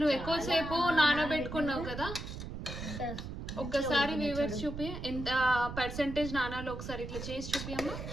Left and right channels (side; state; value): right; noise; rumble, 8 dB below the sound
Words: ఎక్కువసేపు నానబెట్టుకున్నావు కదా. ఒక్కసారి వ్యూవర్స్ చూపి ఎంత పర్సెంటేజ్ నానాలో ఒకసారి ఇట్లా చేసి చూపియమ్మా.